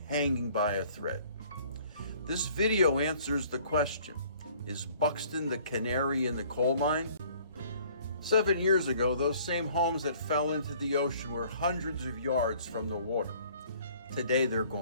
hanging by a thread. This video answers the question, is Buxton the canary in the coal mine? 7 years ago, those same homes that fell into the ocean were hundreds of yards from the water. Today they're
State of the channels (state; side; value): inverted; both; correlation -0.56